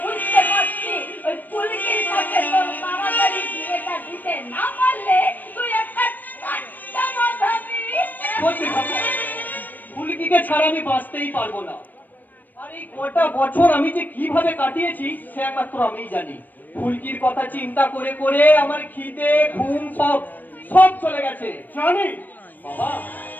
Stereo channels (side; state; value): right; late; 0.087 ms